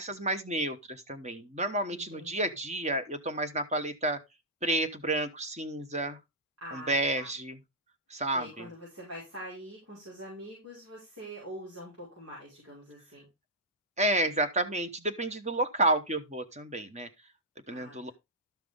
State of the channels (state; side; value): normal; both; correlation -0.11